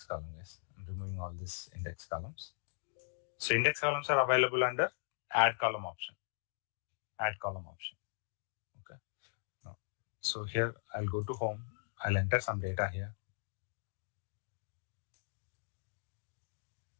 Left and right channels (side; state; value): right; silent; digital silence